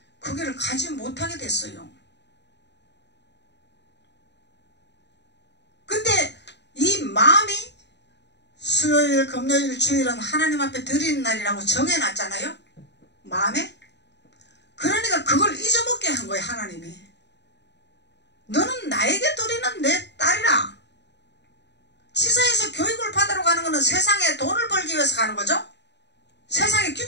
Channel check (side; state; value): right; late; 0.50 ms